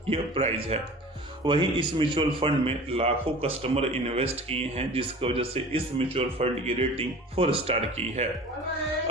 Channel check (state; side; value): normal; both; correlation 0.40